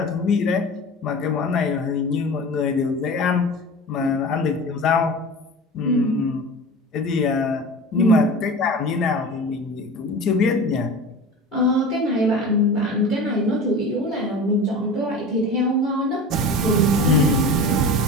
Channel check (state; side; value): normal; both; correlation 0.34